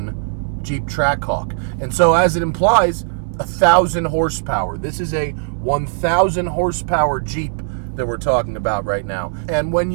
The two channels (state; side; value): silent; left; digital silence